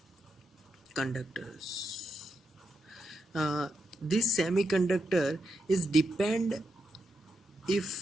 conductors. This semiconductor is depend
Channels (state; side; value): normal; both; correlation 0.84